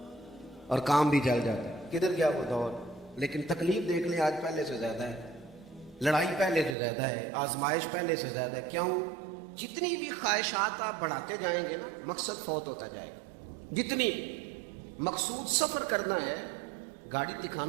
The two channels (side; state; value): left; drops out; at 6.8 s